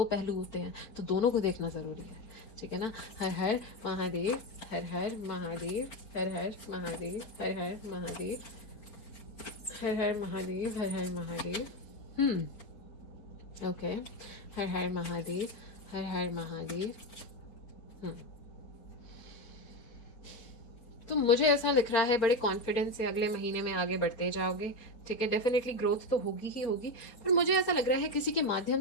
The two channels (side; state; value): right; late; 4.2 ms